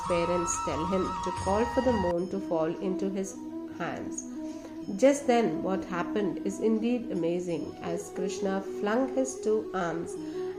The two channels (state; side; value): identical; both; correlation 1.00